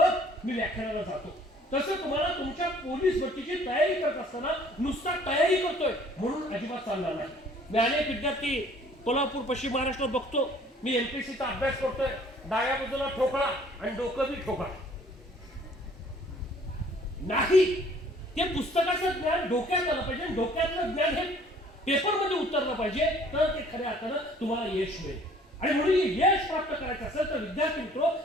मी व्याख्यानाला जातो. तसं तुम्हाला तुमच्या पोलीस भरतीची तयारी करत असताना नुसता तयारी करतोय म्हणून अजिबात चालणार नाही. मी अनेक विद्यार्थी कोल्हापूर, पश्चिम महाराष्ट्रात बघतो, मी एमपीसीचा अभ्यास करतोय, डाव्या बाजूला ठोकळा आणि डोकं बी ठोकळा. नाही, ते पुस्तकाचं ज्ञान डोक्यात आलं पाहिजे, डोक्यातलं ज्ञान हे पेपरमध्ये उतरलं पाहिजे, तर ते खऱ्या अर्थानं तुम्हाला यश मिळेल. आणि म्हणून यश प्राप्त करायचं असेल तर विद्यार्थी मित्र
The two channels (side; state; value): both; normal; correlation 0.56